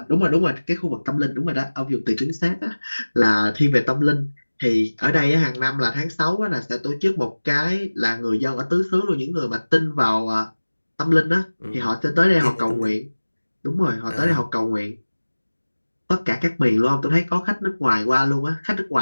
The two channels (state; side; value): inverted; both; correlation -1.00